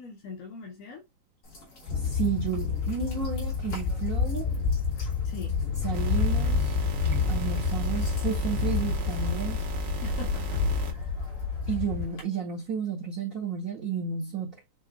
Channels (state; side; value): late; right; 3.9 ms